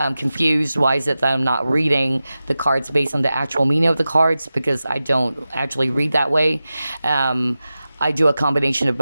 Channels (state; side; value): inverted; both; correlation -0.94